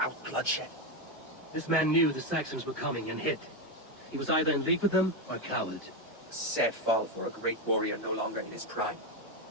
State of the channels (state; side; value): normal; both; correlation 0.09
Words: bloodshed. This man knew the Saxons were coming and hid. He was either in league with them or a coward. A sad fall for a great warrior no longer in his prime.